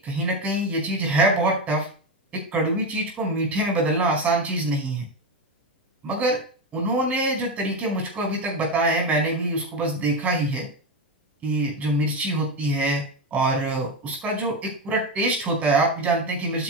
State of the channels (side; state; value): both; normal; correlation 0.13